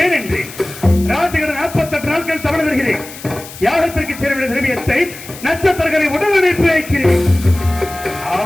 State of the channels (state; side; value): noise; left; hiss, 15 dB below the sound